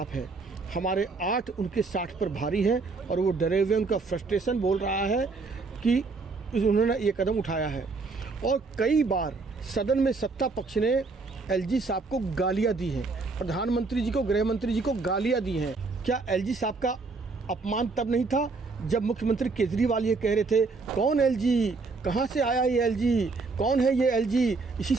है, हमारे 8 उनके 60 पर भारी हैं और वो डरे हुए, उनका फ्रस्ट्रेशन बोल रहा है कि उन्होंने ये कदम उठाया है। और कई बार सदन में सत्ता पक्ष ने एलजी साहब को गालियां दी हैं, प्रधानमंत्री जी को, गृह मंत्री जी को गालियां दी हैं। क्या एलजी साहब का अपमान तब नहीं था जब मुख्यमंत्री केजरीवाल ये कह रहे थे, कौन एलजी, कहाँ से आया ये एलजी, कौन है ये एलजी, इसी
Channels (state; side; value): quieter; left; 4.0 dB